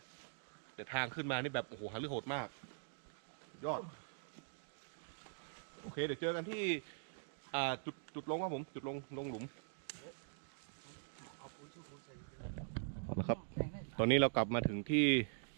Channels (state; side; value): silent; left; digital silence